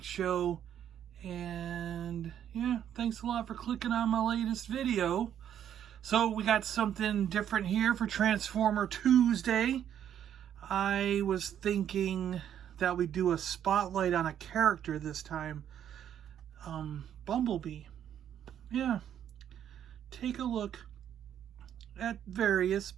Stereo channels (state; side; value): quieter; left; 9.8 dB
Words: Show, and yeah, thanks a lot for clicking on my latest video. So we got something different here for Transformer Tuesday. I was thinking that we'd do a spotlight on a character this time. Bumblebee. Yeah, take a look at various